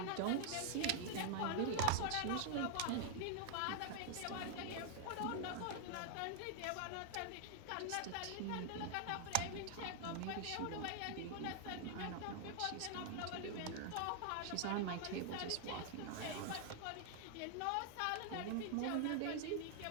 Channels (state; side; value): different; both; correlation 0.00